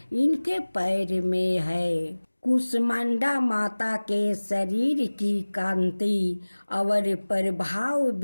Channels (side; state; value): both; inverted; correlation -1.00